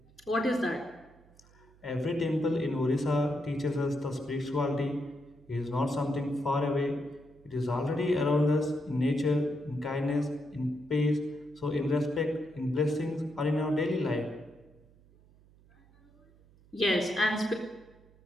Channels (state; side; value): noise; right; hum, 27 dB below the sound